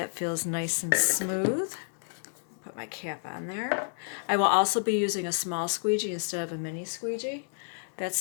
feels nice and smooth. Put my cap on there. I will also be using a small squeegee instead of a mini squeegee. That's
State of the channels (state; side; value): silent; right; digital silence